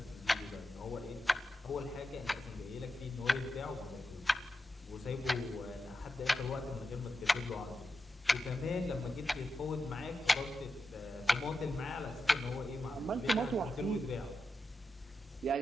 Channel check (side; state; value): both; normal; correlation 0.89